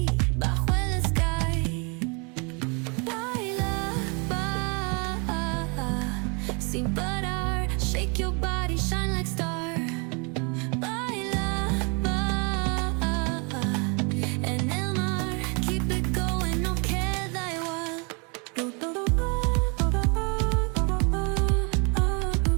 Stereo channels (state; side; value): quieter; left; 33.1 dB